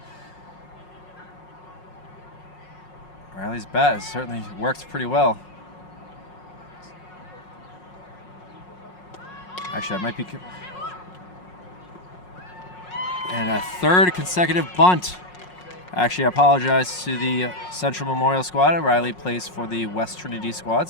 Riley's bat has certainly worked pretty well. Actually, I might be... And a 3rd consecutive bunt. Actually, I apologize to the Central Memorial squad. Riley plays for the West Trinity squad,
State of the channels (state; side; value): late; right; 5.5 ms